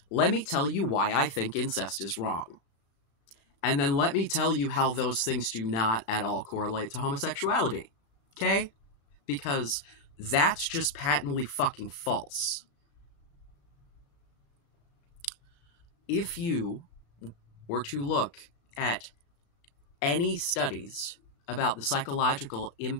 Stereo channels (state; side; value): late; right; 36 ms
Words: Let me tell you why I think incest is wrong. And then let me tell you how those things do not at all correlate to homosexuality. Okay? Because that's just patently fucking false. If you were to look at any studies about the psychological